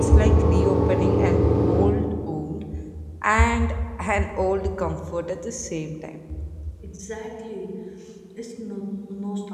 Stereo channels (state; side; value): identical; both; correlation 1.00